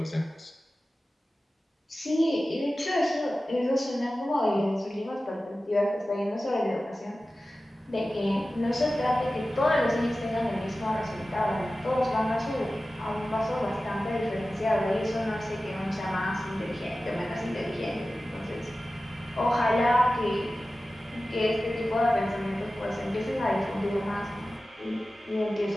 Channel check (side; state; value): both; normal; correlation 0.95